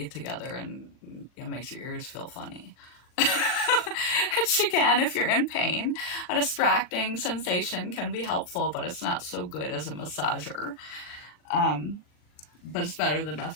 together, and it makes your ears feel funny. Which, again, if you're in pain, a distracting sensation can be helpful, but it's not so good as a massager. But it's better than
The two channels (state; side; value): late; right; 39 ms